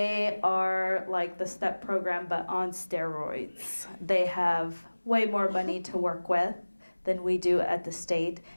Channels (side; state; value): both; inverted; correlation -1.00